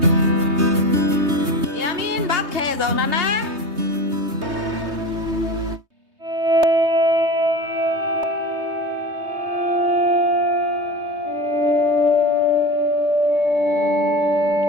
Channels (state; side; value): late; left; 3.2 ms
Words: ইয়ামিন ভাত খেয়ে যাও না না।